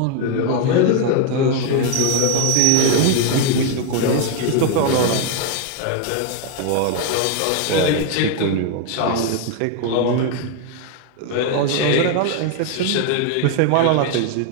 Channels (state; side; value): different; both; correlation 0.00